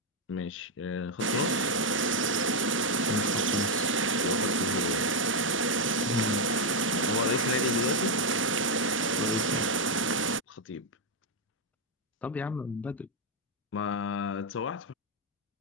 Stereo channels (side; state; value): both; normal; correlation 0.02